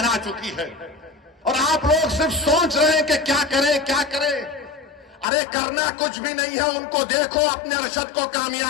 चुकी है और आप लोग सिर्फ सोच रहे हैं कि क्या करें क्या करें। अरे करना कुछ भी नहीं है, उनको देखो, अपने अरशद को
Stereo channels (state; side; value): drops out; right; at 5.2 s